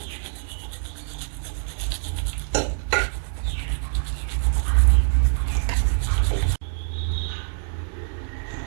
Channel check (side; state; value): left; silent; digital silence